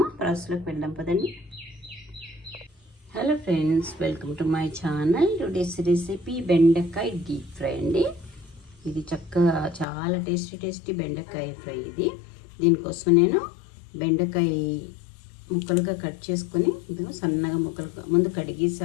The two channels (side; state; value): right; drops out; at 9.9 s